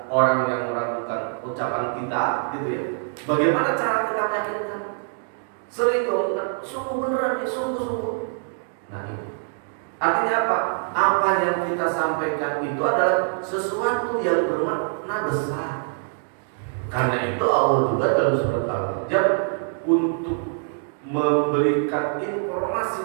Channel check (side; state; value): left; silent; digital silence